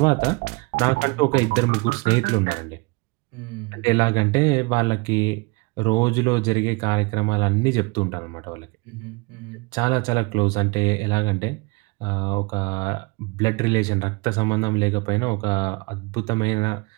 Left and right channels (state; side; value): quieter; left; 27.5 dB